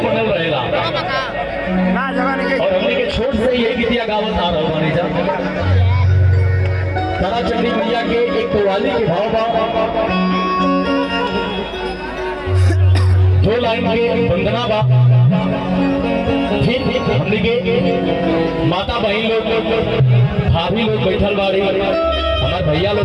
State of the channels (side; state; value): both; identical; correlation 1.00